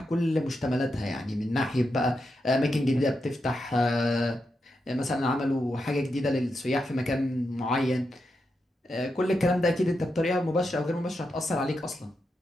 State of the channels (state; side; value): normal; both; correlation 0.86